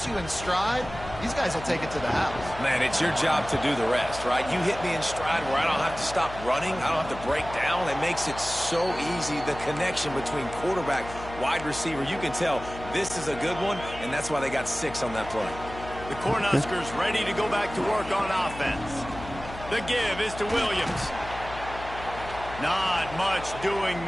you in stride, these guys will take it to the house. Man, it's your job to do the rest, right? You hit me in stride where I don't have to stop running. I don't have to break down. It makes it so easy, the connection between quarterback, wide receiver. You can tell this is a good one, and that's why they got 6 on that play. The Cornhuskers ready to go back to work on offense. The give is to Williams. Not much doing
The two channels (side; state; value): left; noise; hum, 13 dB below the sound